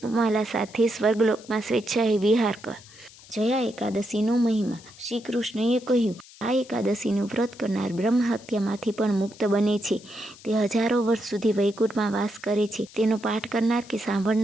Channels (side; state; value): left; noise; hiss, 22 dB below the sound